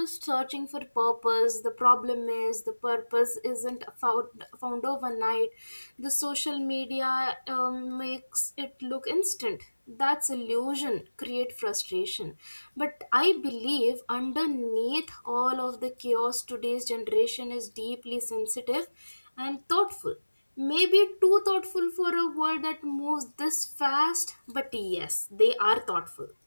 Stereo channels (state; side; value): inverted; both; correlation -1.00